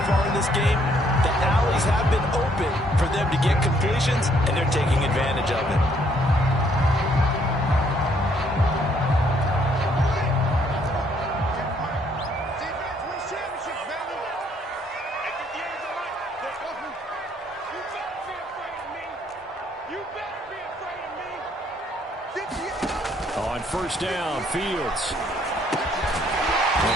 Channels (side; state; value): both; normal; correlation 0.67